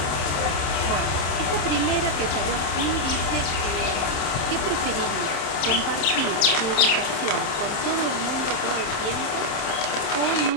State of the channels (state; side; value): late; right; 27 ms